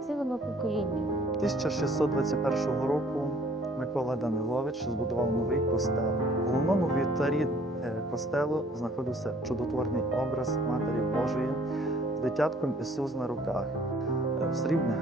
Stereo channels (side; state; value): both; normal; correlation 0.57